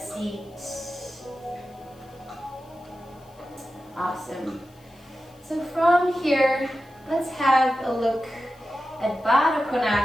Awesome. So from here, let's have a look at Baddha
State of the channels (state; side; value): noise; left; hiss, 30 dB below the sound